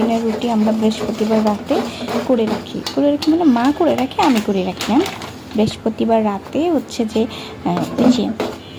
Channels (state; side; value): identical; both; correlation 1.00